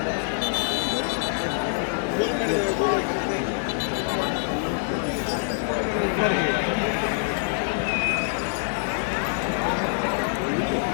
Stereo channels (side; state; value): right; silent; digital silence